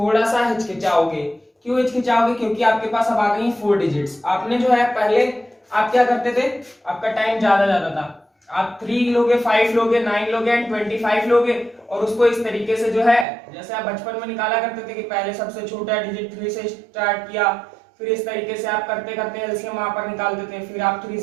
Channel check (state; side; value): drops out; left; at 13.2 s